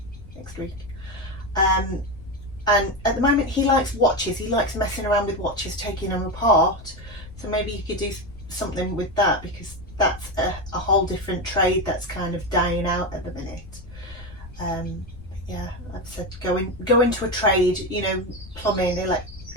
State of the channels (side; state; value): left; noise; rumble, 16 dB below the sound